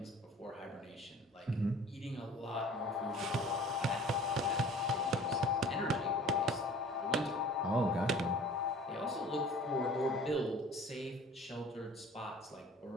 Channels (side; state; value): both; normal; correlation 0.47